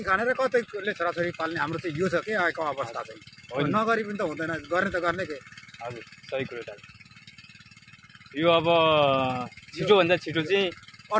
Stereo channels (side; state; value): both; identical; correlation 1.00